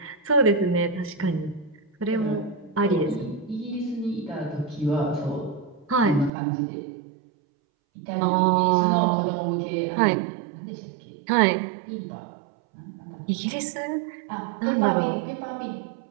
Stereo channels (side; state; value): left; drops out; at 6.3 s